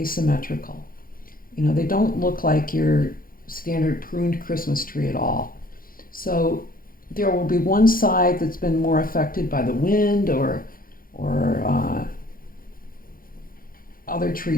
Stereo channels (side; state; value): right; late; 0.41 ms